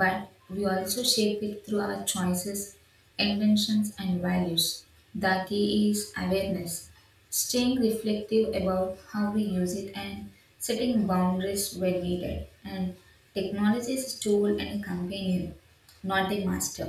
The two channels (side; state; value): both; identical; correlation 1.00